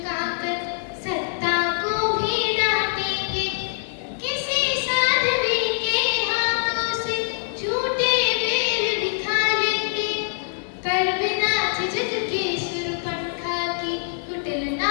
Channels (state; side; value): silent; right; digital silence